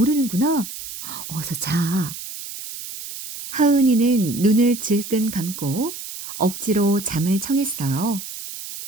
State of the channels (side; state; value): right; noise; hiss, 10 dB below the sound